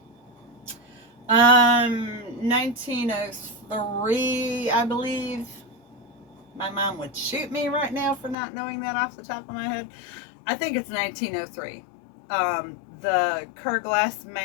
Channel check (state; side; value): drops out; right; at 8.3 s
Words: 1903, I believe. My mom would shoot me right now for not knowing that off the top of my head. I think it's 1903. The Kerr Glass